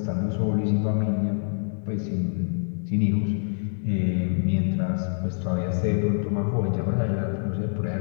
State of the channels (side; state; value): right; silent; 61 dB below the other